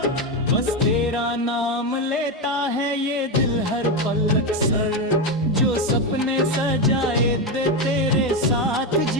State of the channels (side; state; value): both; normal; correlation 0.11